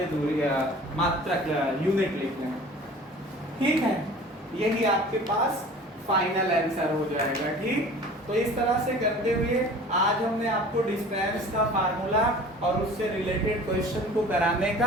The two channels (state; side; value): normal; both; correlation 0.44